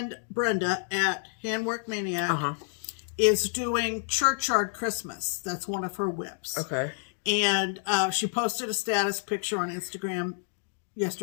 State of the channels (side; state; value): right; silent; 59 dB below the other